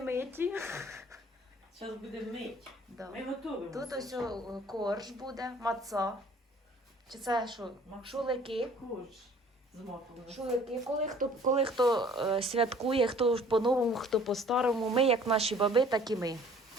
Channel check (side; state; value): both; normal; correlation 0.53